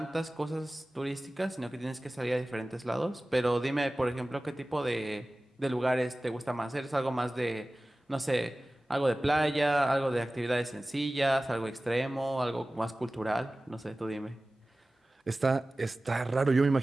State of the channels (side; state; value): both; normal; correlation 0.97